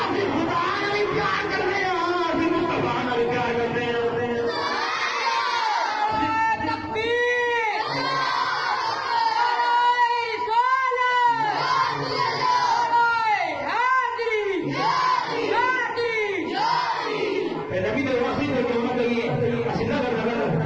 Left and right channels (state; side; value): identical; both; correlation 1.00